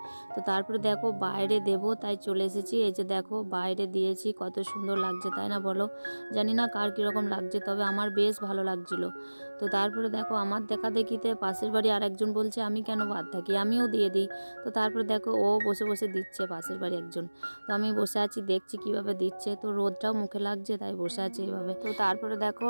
তো তারপরে দেখো বাইরে দেবো, তাই চলে এসেছি। এই যে দেখো বাইরে দিয়েছি, কত সুন্দর লাগছে তাই না বলো? জানি না কার কীরকম লাগছে, তবে আমার বেশ ভালো লাগছিলো। তো তারপরে দেখো আমার দেখা দেখিতে পাশের বাড়ি আর একজন বলছে আমি কেন বাদ থাকি, আমিও দিয়ে দিই। তো তারপরে দেখো ও বসে বসে দিচ্ছে, পাশের বাড়ি একজন। তো আমি বসে আছি দেখছি কিভাবে দিচ্ছে, তো রোদটাও মুখে লাগছে তাই বসে আছি এইভাবে। তো তারপরে দেখো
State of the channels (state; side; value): inverted; both; correlation -1.00